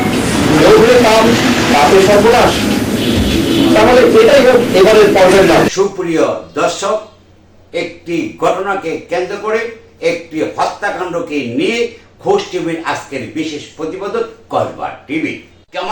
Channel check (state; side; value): identical; both; correlation 1.00